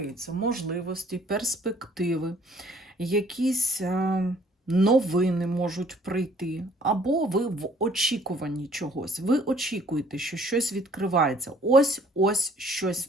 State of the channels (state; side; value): normal; both; correlation 0.58